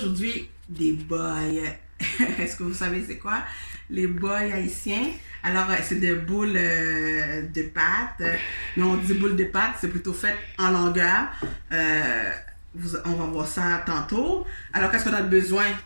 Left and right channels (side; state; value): both; inverted; correlation -1.00